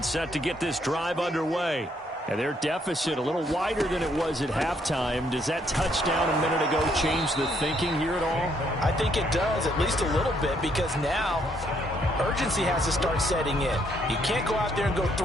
set to get this drive underway. And their deficit a little wider than it was at halftime. Does that touchdown a minute ago change the thinking here at all? I think it does, at least a little bit, because now urgency has to start setting in. You can't go out there and go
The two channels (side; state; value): both; normal; correlation 0.71